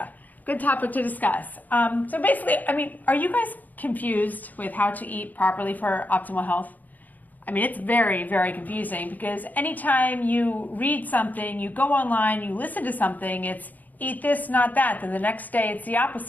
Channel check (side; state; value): right; late; 0.082 ms